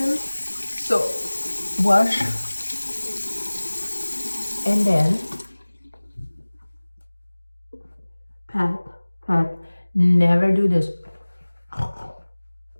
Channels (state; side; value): inverted; both; correlation -1.00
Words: So wash, and then pat. Never do this.